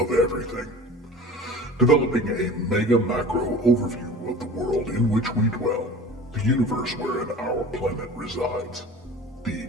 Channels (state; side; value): normal; both; correlation 0.40